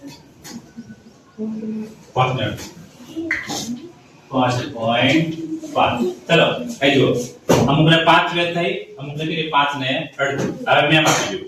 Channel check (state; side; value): identical; both; correlation 1.00